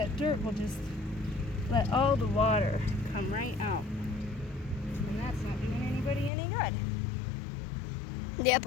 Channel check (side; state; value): right; drops out; at 6.3 s